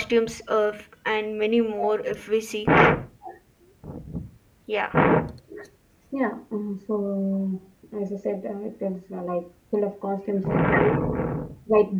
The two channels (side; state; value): both; identical; correlation 1.00